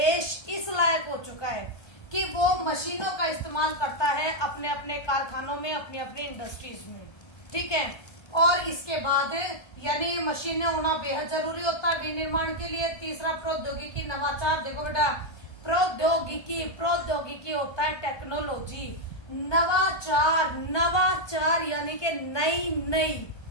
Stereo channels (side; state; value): right; late; 1.3 ms